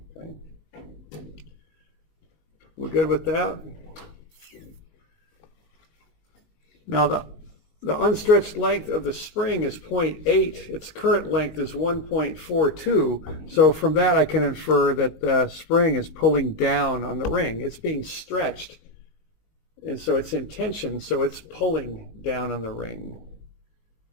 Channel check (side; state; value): right; late; 19 ms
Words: We're good with that? Now the unstretched length of the spring is 0.8. Its current length is 1.42. So from that I can infer that the spring is pulling down on the ring. It's being stretched. And so it's in tension, so it's pulling down on the ring.